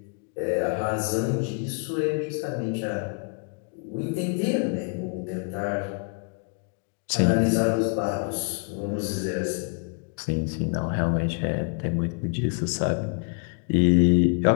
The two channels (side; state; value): right; quieter; 39.8 dB